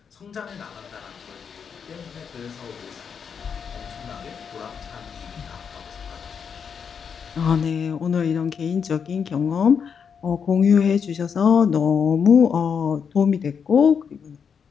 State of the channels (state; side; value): quieter; right; 6.7 dB